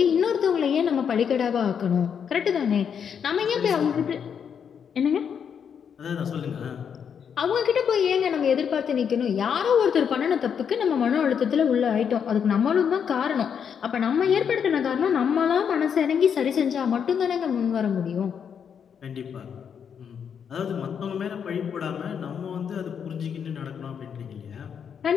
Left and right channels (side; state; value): right; quieter; 7.5 dB